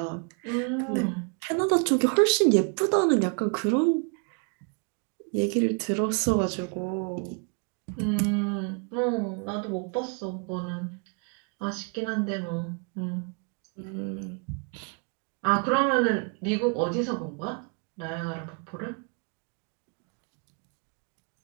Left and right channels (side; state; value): left; quieter; 37.8 dB